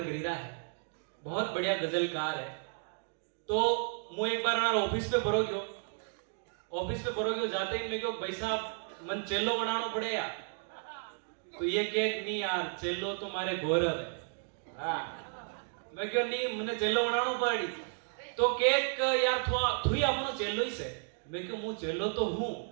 रहा है, बहुत बढ़िया गजलकार है। तो मैं एक बार हमारा ऑफिस पे बरोग्यो जाते ही मैं क्यों भाई साहब मन चेलो बनाना पड़े यार। तो ये केक नहीं यार, चेलो तो मारे गौरव है। मैं क्यों नहीं, मैंने चेलो बनाना पड़ी। तो केक यार थोड़ी आपनो चेलो ही से। मैं क्यों मुंह चेलो तो हूं,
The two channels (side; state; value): left; silent; 56 dB below the other